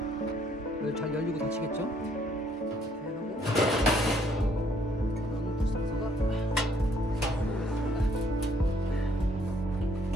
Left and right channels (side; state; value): both; normal; correlation 0.66